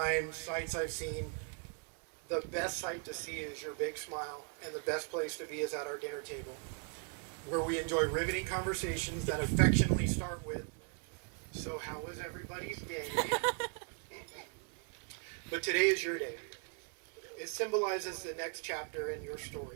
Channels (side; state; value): left; quieter; 38.5 dB